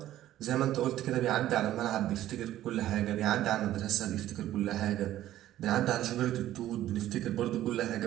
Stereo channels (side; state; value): left; quieter; 13.4 dB